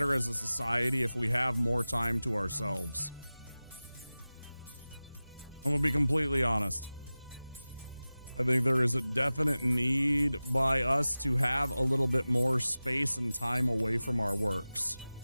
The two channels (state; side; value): inverted; both; correlation -0.97